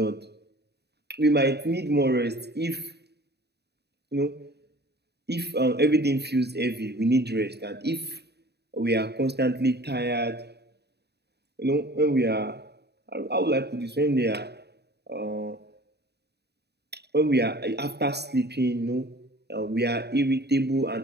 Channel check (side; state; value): left; late; 0.48 ms